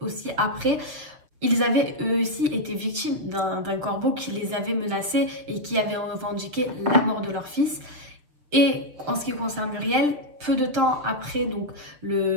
aussi après. Ils avaient eux aussi été victimes d'un corbeau qui les avait menacés et qui avait revendiqué la mort de leur fils. Et en ce qui concerne Muriel, peu de temps après donc,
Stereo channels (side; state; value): left; late; 6.7 ms